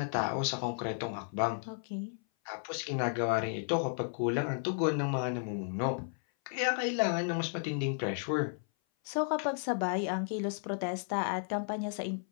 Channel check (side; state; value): right; silent; 55 dB below the other